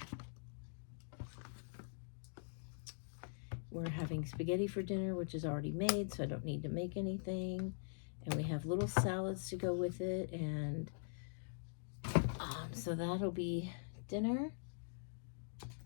we're having spaghetti for dinner, which is already made, so I don't need to make anything. And we have little salads to go with it, and so that'll be dinner.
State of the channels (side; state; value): right; silent; digital silence